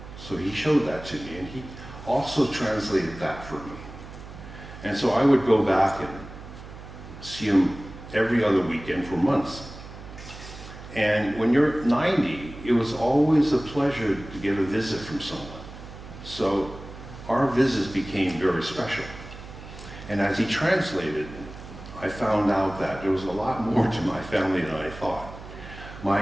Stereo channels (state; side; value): noise; right; hum, 14 dB below the sound